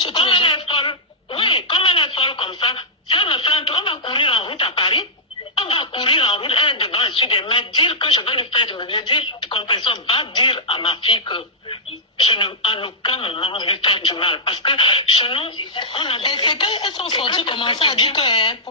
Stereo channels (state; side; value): normal; both; correlation -0.10